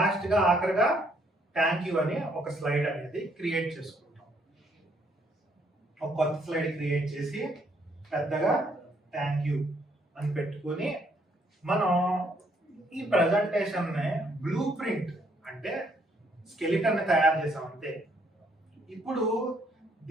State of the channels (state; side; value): normal; both; correlation 0.69